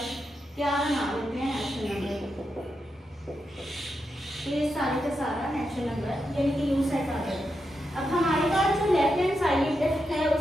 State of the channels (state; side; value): normal; both; correlation 0.86